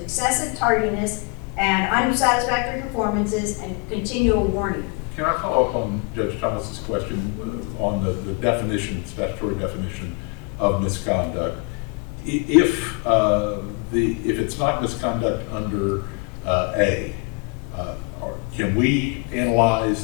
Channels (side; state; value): right; quieter; 29.4 dB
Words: tardiness and unsatisfactory performances and continual warning. Can I follow up on Judge Thomas's question on the definition, statutory definition of misconduct? If it's not misconduct under A, or can we analyze